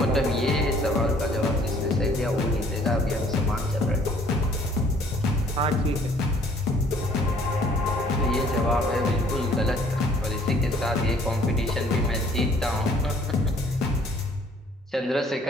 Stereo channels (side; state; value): both; normal; correlation 0.58